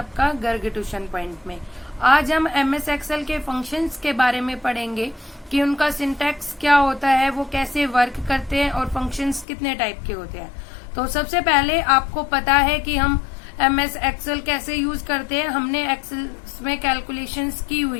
गर्ग ट्यूशन पॉइंट में। आज हम एमएस एक्सेल के फंक्शंस के बारे में पढ़ेंगे कि उनका सिंटैक्स क्या होता है, वो कैसे वर्क करते हैं और फंक्शंस कितने टाइप के होते हैं। तो सबसे पहले आपको पता है कि हम एमएस एक्सेल कैसे यूज करते हैं। हमने एक्सेल में कैलकुलेशंस की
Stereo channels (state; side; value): drops out; right; at 9.5 s